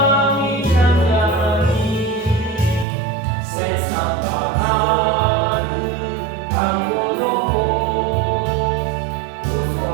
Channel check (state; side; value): drops out; left; at 2.9 s